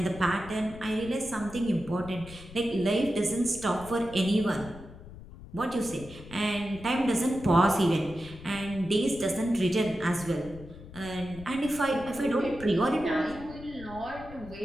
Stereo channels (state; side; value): noise; left; rumble, 16 dB below the sound